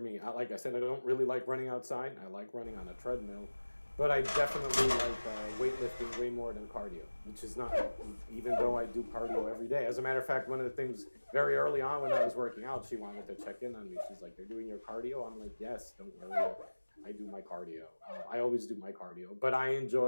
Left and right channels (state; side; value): inverted; both; correlation -1.00